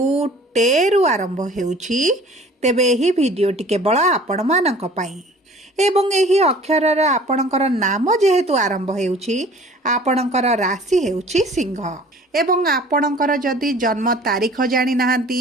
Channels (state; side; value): normal; both; correlation 0.48